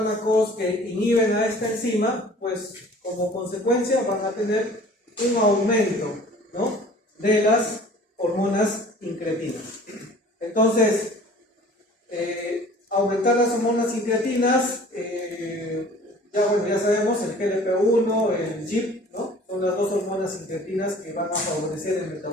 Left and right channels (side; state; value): both; normal; correlation 0.48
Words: que inhiben a esta enzima, pues como consecuencia van a tener un aumento, ¿no? De las hormonas incretinas. Entonces, aumentar las hormonas incretinas, ya sabemos, el GLP-1, el GIP, ¿no? Son las dos hormonas incretinas que van a favorecer el